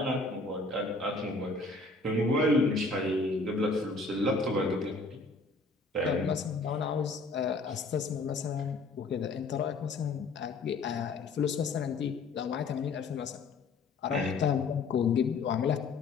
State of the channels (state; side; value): quieter; right; 3.7 dB